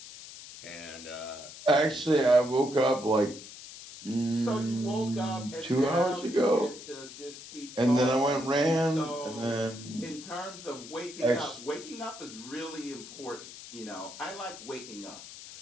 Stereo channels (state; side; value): noise; left; hiss, 14 dB below the sound